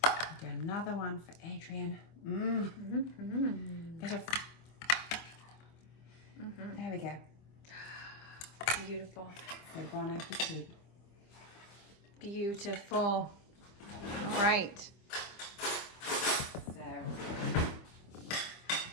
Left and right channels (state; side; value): late; right; 25 ms